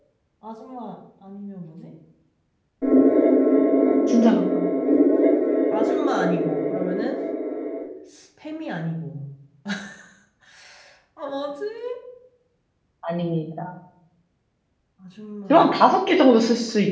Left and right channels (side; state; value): both; identical; correlation 1.00